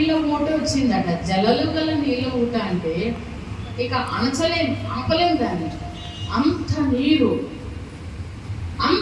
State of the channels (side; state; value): both; identical; correlation 1.00